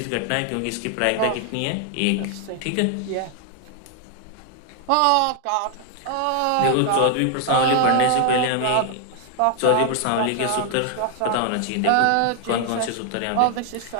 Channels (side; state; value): both; different; correlation 0.00